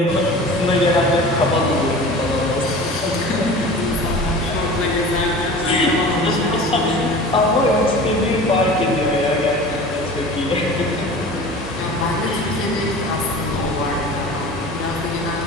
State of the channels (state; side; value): normal; both; correlation 0.39